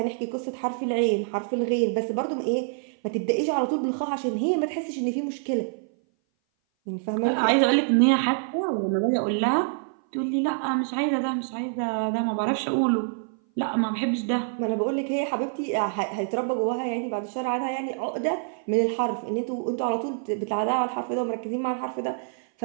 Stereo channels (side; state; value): left; silent; 58 dB below the other